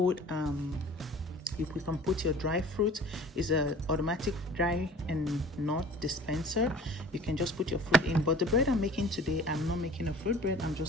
put your dry fruit. It's a automatic dry and nut dispenser. You can just put your fruit in. But the bread I'm making today, I'm not making a fruit bread. I'm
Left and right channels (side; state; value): both; normal; correlation 0.45